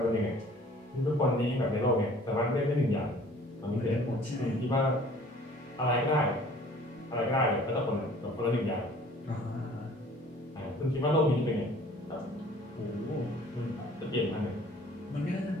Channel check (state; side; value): normal; both; correlation 0.52